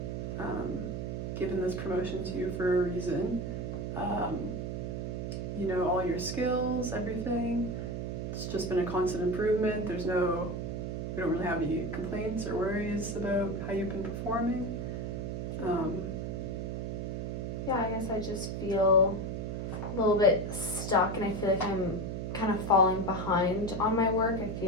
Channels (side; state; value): right; noise; hum, 3 dB below the sound